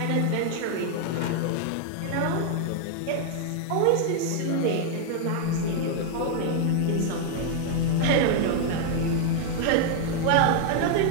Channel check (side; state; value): both; different; correlation 0.00